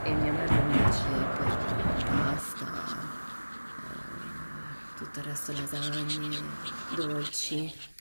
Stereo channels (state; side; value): inverted; both; correlation -1.00